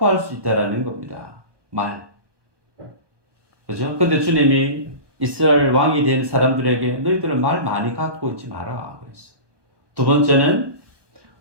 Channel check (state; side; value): late; left; 1.2 ms